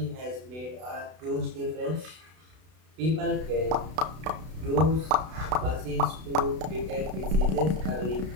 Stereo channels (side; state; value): left; late; 32 ms